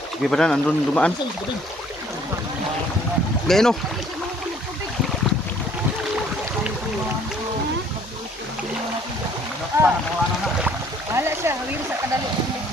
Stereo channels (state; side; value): normal; both; correlation 0.59